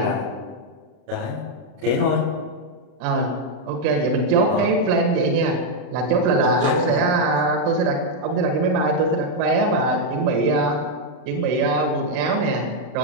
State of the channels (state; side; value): late; left; 40 ms